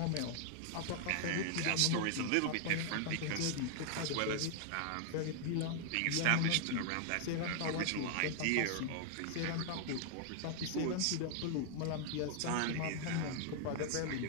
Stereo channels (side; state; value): both; different; correlation 0.00